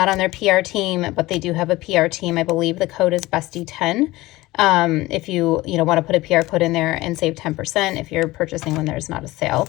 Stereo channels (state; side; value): quieter; right; 19.0 dB